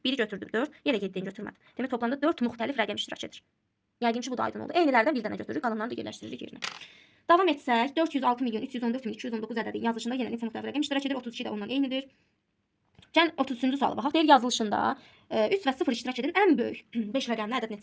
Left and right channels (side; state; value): both; identical; correlation 1.00